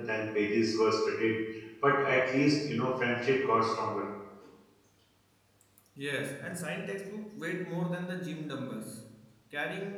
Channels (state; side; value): identical; both; correlation 1.00